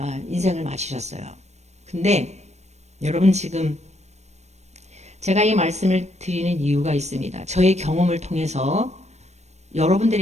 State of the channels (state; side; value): late; left; 0.32 ms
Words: 인생을 마치셨어요. 근데 여러분 지금 제가 이 말씀을 드리는 이유가 있습니다. 저의 경험을 통해서